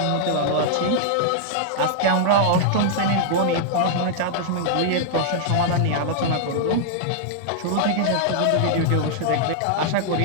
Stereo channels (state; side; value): different; both; correlation -0.01